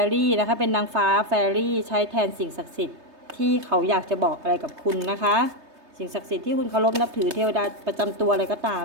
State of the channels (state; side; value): late; left; 3.2 ms